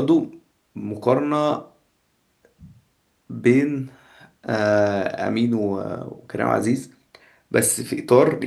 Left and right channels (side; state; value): both; identical; correlation 1.00